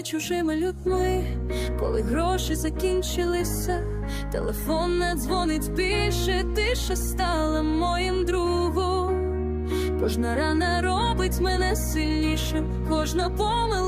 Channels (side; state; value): both; identical; correlation 1.00